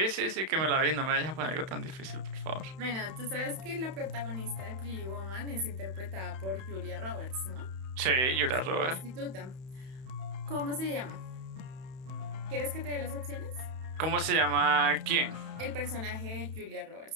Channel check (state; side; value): late; left; 31 ms